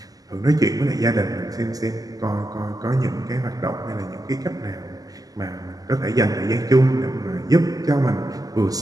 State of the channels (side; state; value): left; late; 0.17 ms